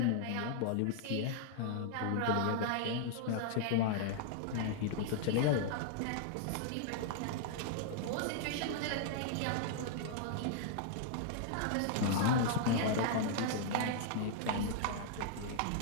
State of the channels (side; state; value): both; different; correlation -0.01